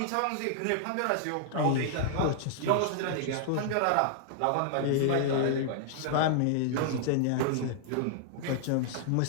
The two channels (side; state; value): both; different; correlation -0.01